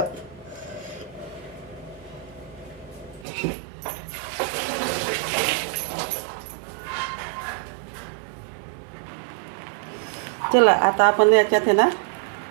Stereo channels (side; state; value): left; drops out; at 3.2 s